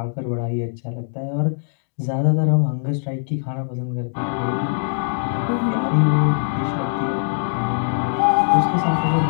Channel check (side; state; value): right; silent; digital silence